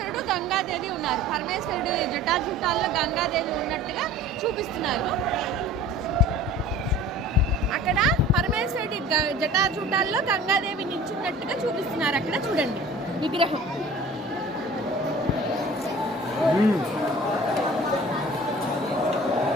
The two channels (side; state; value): both; normal; correlation 0.44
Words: గంగాదేవి ఉన్నారు. పరమేశ్వరుడు జటాజుటాల్లో గంగాదేవి ఉన్నట్టుగా చూపిస్తున్నారు. అక్కడ పరమేశ్వరుడి జటాజూటాల్లో గంగాదేవి నిల్చున్నట్టుగా చూపిస్తున్నారు. అక్కడ చూడండి విగ్రహం.